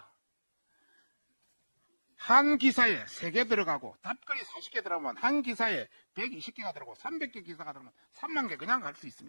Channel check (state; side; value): inverted; both; correlation -1.00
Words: 한 기사에 3개 들어가고 답글이 40개 들어가면 한 기사에 120개가 들어가고 300개 기사가 들어가면 3만 개 그냥 갈 수